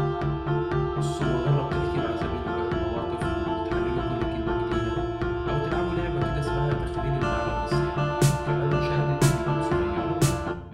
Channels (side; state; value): both; identical; correlation 1.00